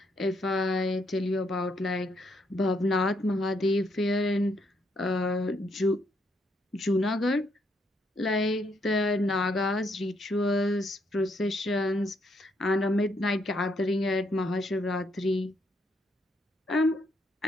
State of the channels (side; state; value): both; normal; correlation 0.74